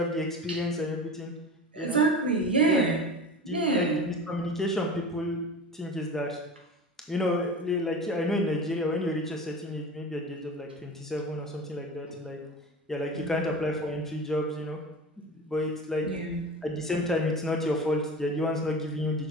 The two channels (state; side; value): normal; both; correlation 0.33